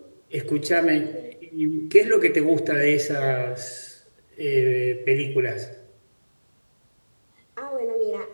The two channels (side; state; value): both; inverted; correlation -1.00